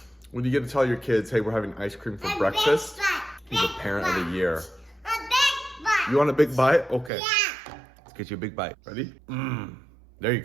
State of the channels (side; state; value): left; drops out; at 7.1 s